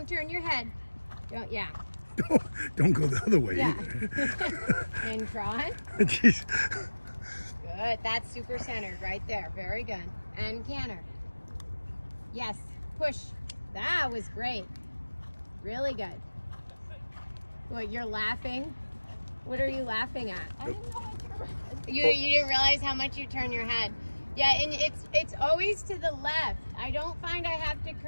turn your head. Don't go the other way Yeah. either. And trot. Jeez. Good, that's super centered right there. Very good. And canter. Yes, push. That was great. Really good. What, you're laughing? What are you laughing at? I didn't know I turned. You didn't realize how much you turn your head. Yeah, and it's always to the left. I don't find I have to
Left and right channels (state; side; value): inverted; both; correlation -1.00